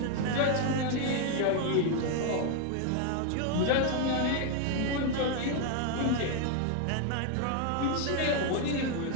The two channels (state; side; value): different; both; correlation 0.01